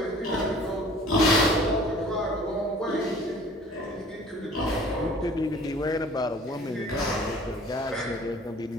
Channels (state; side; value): normal; both; correlation 0.49